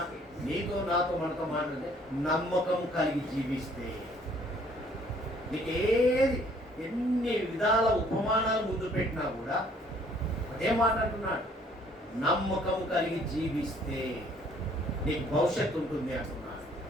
నీతో నాతో మనతో మాట్లాడితే నమ్మకం కలిగి జీవిస్తే, నీకేది ఎన్ని విధాల ఉపమానాలు ముందు పెట్టినా కూడా అదే మాట్లాడుతున్నాడు. నమ్మకం కలిగి జీవిస్తే నీకు భవిష్యత్తు ఉంటుంది అంటున్నాడు,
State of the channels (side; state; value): both; normal; correlation 0.60